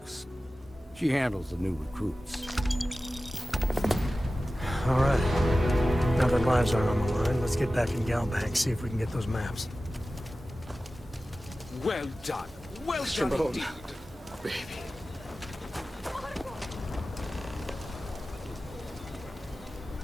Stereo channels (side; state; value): both; normal; correlation 0.95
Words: She handles the new recruits. All right. Now that lives aren't on the line, let's get back in Galbank, see if we can get those maps. Well done. Well done indeed. Baby.